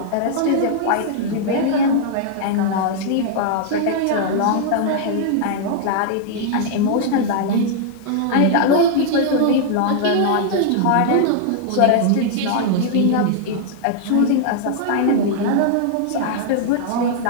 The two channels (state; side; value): different; both; correlation -0.01